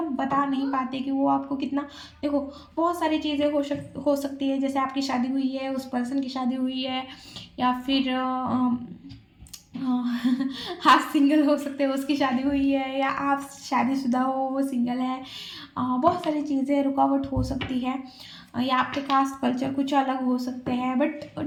बता नहीं पाते कि वो आपको कितना। देखो बहुत सारी चीज़ें हो सकती है, जैसे आपकी शादी हुई है, उस पर्सन की शादी हुई है, या फिर आप सिंगल हो सकते हो, उसकी शादी हुई है, या आप शादीशुदा हो वो सिंगल है। बहुत सारी चीज़ें रुकावट हो सकती है, या आपके कास्ट कल्चर कुछ अलग हो सकते हैं। बट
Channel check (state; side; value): identical; both; correlation 1.00